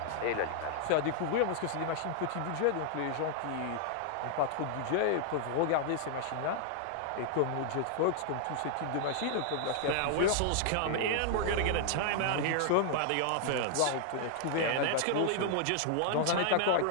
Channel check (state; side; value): different; both; correlation -0.01